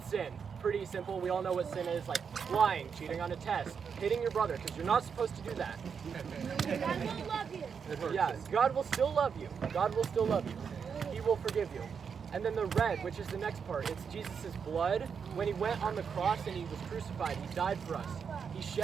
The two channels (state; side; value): quieter; left; 6.5 dB